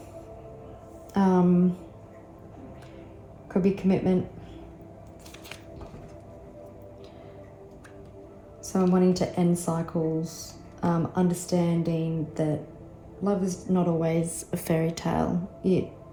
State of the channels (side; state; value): both; identical; correlation 1.00